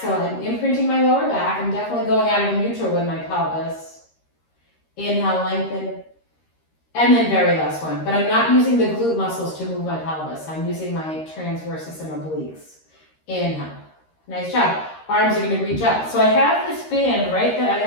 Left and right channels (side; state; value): right; late; 13 ms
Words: I'm imprinting my lower back. I'm definitely going out of neutral with my pelvis. Inhale, lengthen, and then very last one. But I'm not using the glute muscles to move my pelvis. I'm using my transversus and obliques. Inhale. Nice job. Arms are going to reach up. So I have this band, right, that